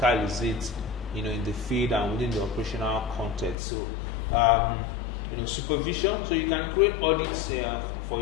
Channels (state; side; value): drops out; right; at 3.6 s